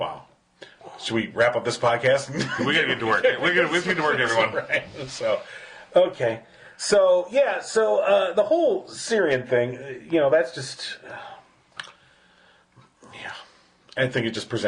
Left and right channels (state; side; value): identical; both; correlation 1.00